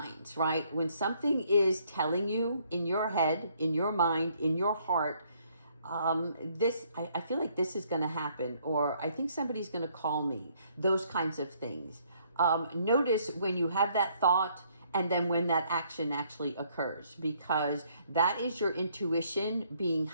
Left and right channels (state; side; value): inverted; both; correlation -0.67